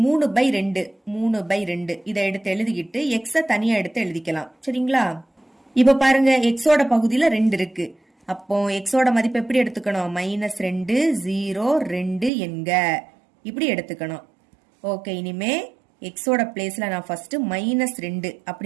3/2 3/2 இதை எடுத்து எழுதிக்கிட்டு x தனியா எடுத்து எழுதிக்கலாம். சரிங்களா? இப்ப பாருங்க xோட பகுதியில 2 இருக்கு. அப்போ xோட மதிப்பு எப்படி எடுத்துக்கணும்? -2 0 2 என்க இப்படி எடுத்துக்கணும். ஓகே, இனிமே xோட பிளேஸ்ல நான் ஃபர்ஸ்ட் -2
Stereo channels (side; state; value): left; drops out; at 12.3 s